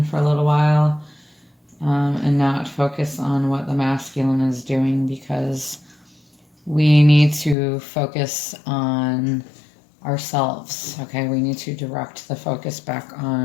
for a little while and not focus on what the masculine is doing, because we need to focus on ourselves, okay? We need to direct the focus back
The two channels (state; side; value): drops out; right; at 7.6 s